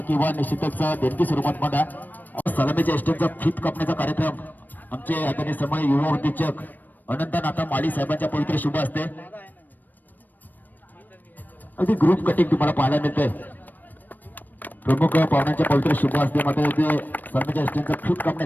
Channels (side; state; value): right; late; 0.088 ms